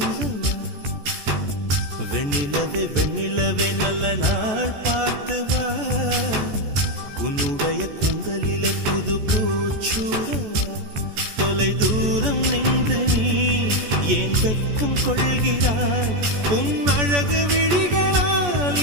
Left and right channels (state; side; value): late; left; 14 ms